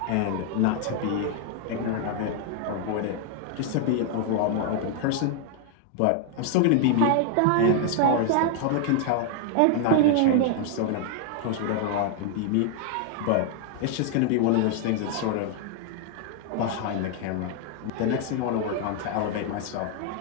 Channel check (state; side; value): different; both; correlation 0.00